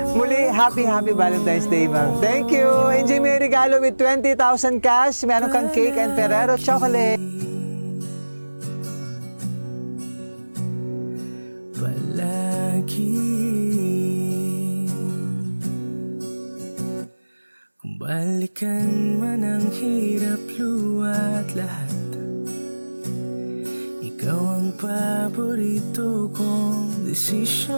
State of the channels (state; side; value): inverted; both; correlation -1.00